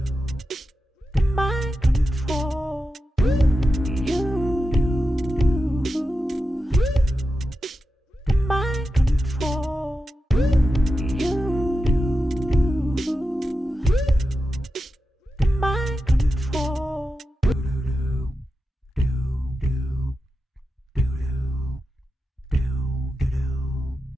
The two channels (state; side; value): normal; both; correlation 0.90